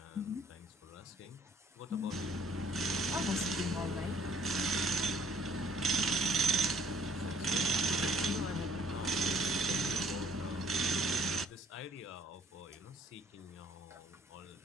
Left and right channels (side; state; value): both; normal; correlation 0.59